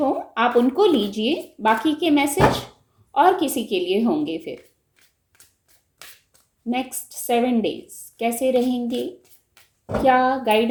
आप उनको लीजिए, बाकी के मैसेज और किसी के लिए होंगे। फिर नेक्स्ट 7 डेज कैसे रहेंगे, क्या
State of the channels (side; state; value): both; identical; correlation 1.00